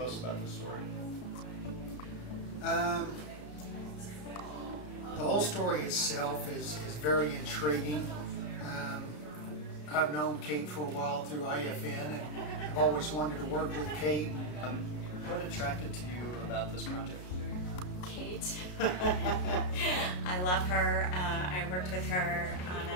about this story? The whole story itself is very intriguing. I've known Kate for a while through IFN, and I've always wanted to work with Kate. What attracted to you about this project? Kate. I love her. I worked with her on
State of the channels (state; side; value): late; right; 33 ms